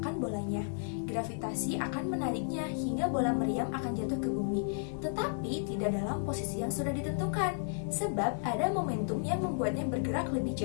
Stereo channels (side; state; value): right; silent; digital silence